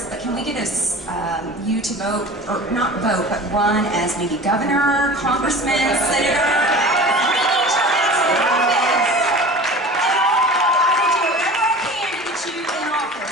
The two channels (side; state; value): both; normal; correlation 0.38